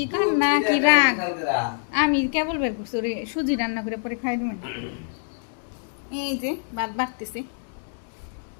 কান্না কি রাগ। আমি কেবল বের করছি ওরে সুজি রান্না করে পরে খাই দেবেন। এই যে ভাত বাড়তেছে,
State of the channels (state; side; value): silent; right; digital silence